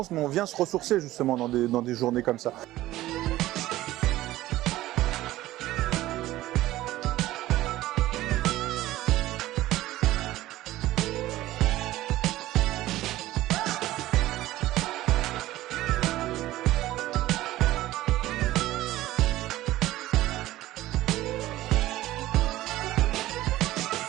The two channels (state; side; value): quieter; left; 15.9 dB